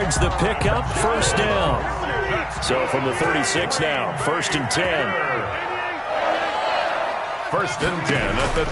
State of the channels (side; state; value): both; identical; correlation 1.00